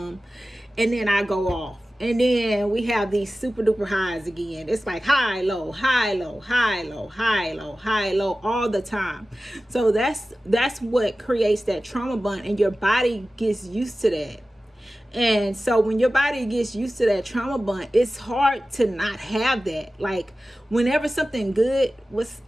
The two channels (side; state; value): both; normal; correlation 0.95